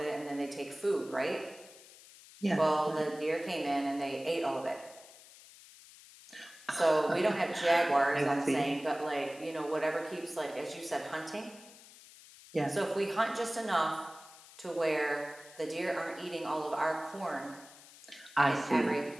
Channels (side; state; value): left; noise; hiss, 20 dB below the sound